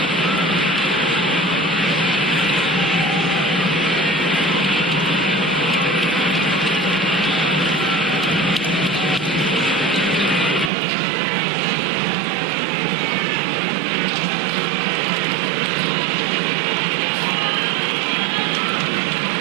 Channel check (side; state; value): left; drops out; at 10.7 s